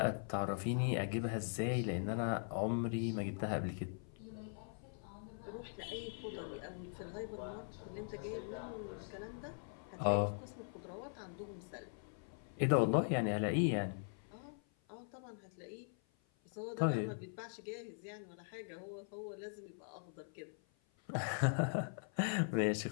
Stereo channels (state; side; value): silent; right; 50 dB below the other